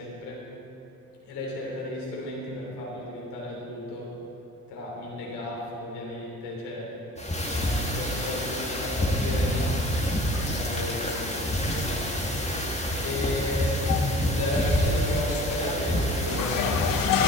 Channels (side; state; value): both; normal; correlation 0.45